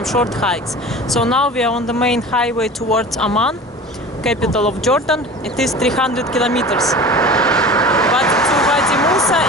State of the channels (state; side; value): normal; both; correlation 0.37